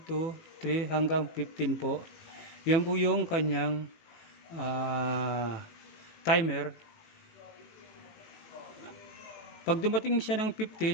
2, 3 hanggang 15 po. Yan po yung kanyang timer. Pag dumating siya ng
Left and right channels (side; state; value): right; late; 18 ms